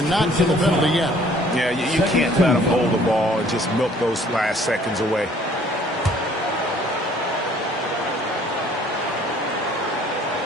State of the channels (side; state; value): both; normal; correlation 0.57